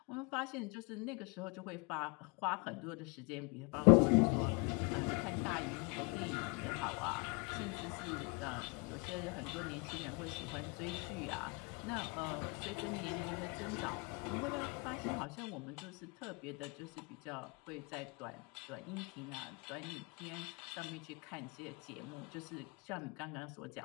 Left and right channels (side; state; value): right; quieter; 30.9 dB